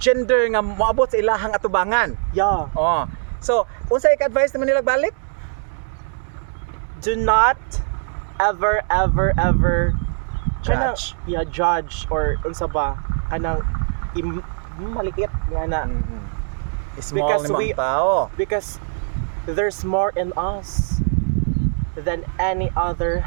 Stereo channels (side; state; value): left; silent; 65 dB below the other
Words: gender nga moabot sa ilahang atubangan. Yeah. Oh. So, unsa ik-advise naman nila balik? Do not ever kanang, Judge. yeah, judge or unsa ba kanang maliit nga na Small Because ni we- mga tao. because there's more in us than any other